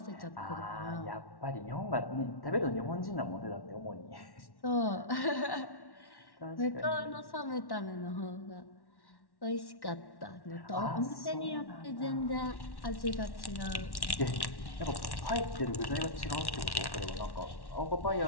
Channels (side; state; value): right; late; 1.1 ms